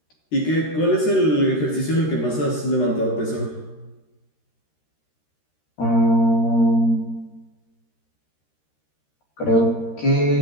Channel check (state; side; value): late; right; 13 ms